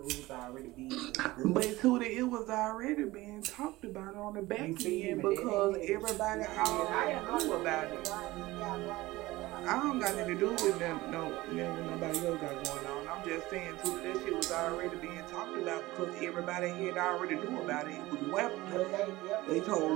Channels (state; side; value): quieter; left; 19.0 dB